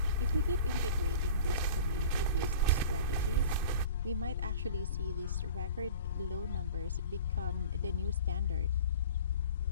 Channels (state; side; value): inverted; both; correlation -0.41